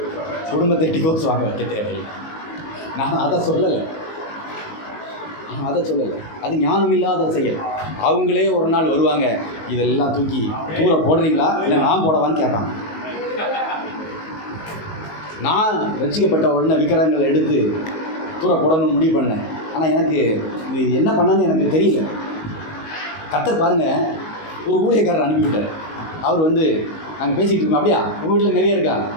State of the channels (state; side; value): late; right; 19 ms